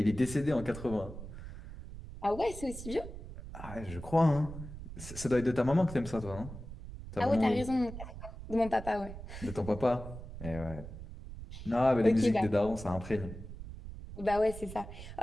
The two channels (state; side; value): noise; right; rumble, 11 dB below the sound